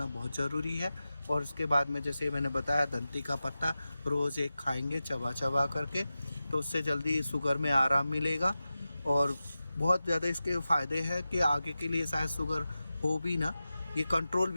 बहुत ज़रूरी है। और उसके बाद में जैसे मैंने बताया दंती का पत्ता रोज़ एक खाएंगे चबा चबा करके, तो उससे जल्दी शुगर में आराम मिलेगा। और बहुत ज़्यादा इसके फ़ायदे हैं कि आगे के लिए शायद शुगर हो भी ना, ये कंट्रोल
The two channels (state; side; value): inverted; both; correlation -0.94